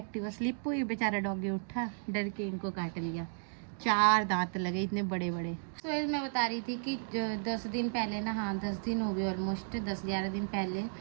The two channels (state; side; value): silent; left; digital silence